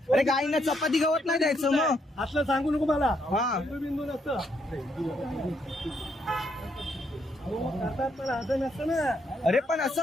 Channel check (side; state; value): both; normal; correlation 0.74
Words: अरे गाईंना चपाती गवत नाही द्यायचं मग. असलं सांगू नको मला. हा. हिंदू बिंदू नसतं. हो, करतात पण असं नसतं ना. अरे पण असं